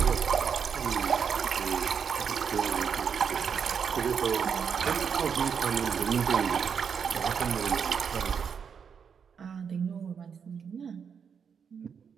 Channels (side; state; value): left; quieter; 6.8 dB